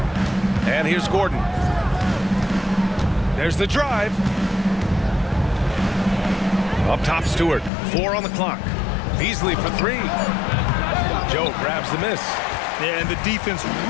And here's Gordon. There's the drive. Up top, Stewart. 4 on the clock. Beasley for 3. Joe grabs the miss. Yeah, and the defense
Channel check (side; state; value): right; drops out; at 7.7 s